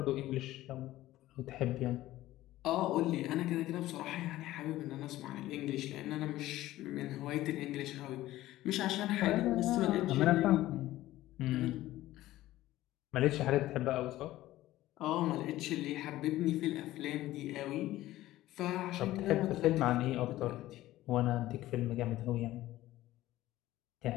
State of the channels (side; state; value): right; quieter; 15.7 dB